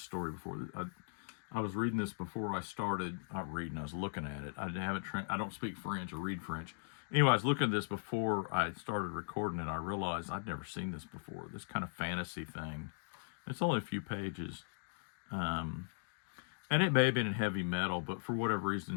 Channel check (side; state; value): right; silent; digital silence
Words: story before. I was reading this before I started, not reading, I was looking at it. I don't speak French or read French. Anyway, I was looking at this before I started recording, and I realized I'd never seen this before, this kind of fantasy thing. It's only a few pages. And it may have been in heavy metal, but for whatever